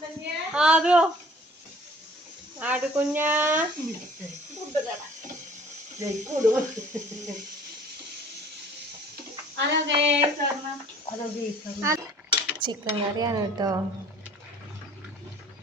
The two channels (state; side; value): normal; both; correlation 0.52